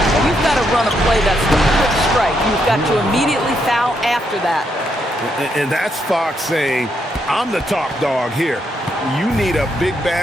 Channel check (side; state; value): both; normal; correlation 0.78